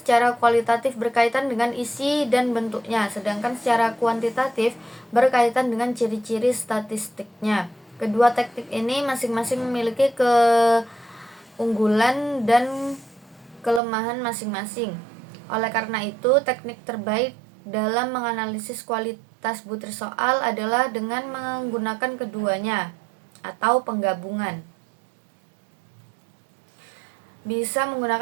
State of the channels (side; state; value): left; drops out; at 13.8 s